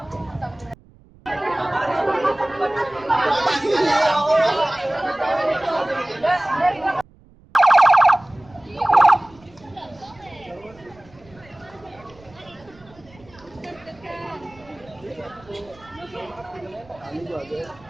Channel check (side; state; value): right; noise; rumble, 26 dB below the sound